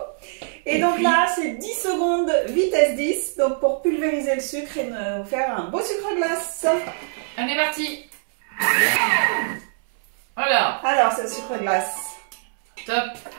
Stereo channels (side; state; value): left; silent; 64 dB below the other